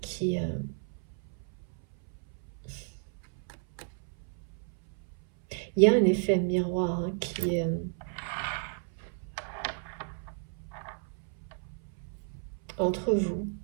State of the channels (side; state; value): left; silent; 56 dB below the other